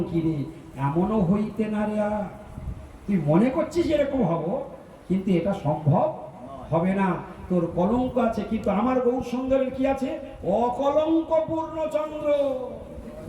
এমনও হইতে না রে। তুই মনে করছিস এরকম হব, কিন্তু এটা সম্ভব হবে না। তোর কলঙ্ক আছে, কিন্তু আমার গৌর সুন্দরের কি আছে? অকলঙ্ক পূর্ণচন্দ্র।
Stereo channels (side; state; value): both; identical; correlation 1.00